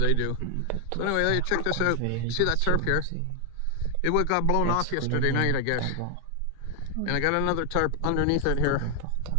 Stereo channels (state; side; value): different; both; correlation 0.00